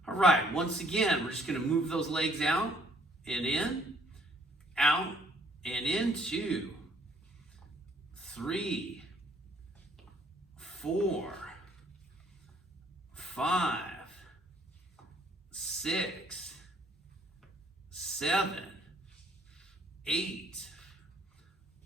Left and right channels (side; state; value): both; normal; correlation 0.63